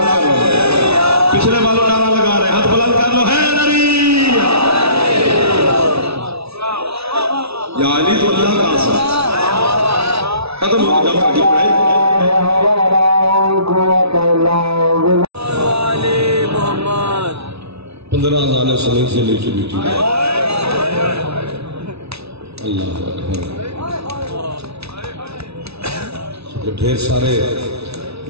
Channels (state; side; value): late; left; 0.79 ms